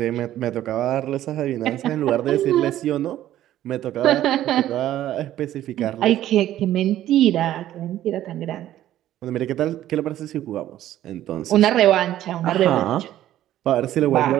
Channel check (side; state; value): left; quieter; 12.9 dB